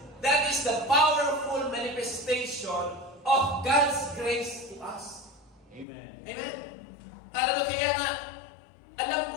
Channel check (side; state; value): right; drops out; at 5.9 s